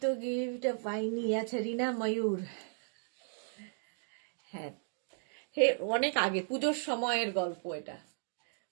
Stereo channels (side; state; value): left; silent; digital silence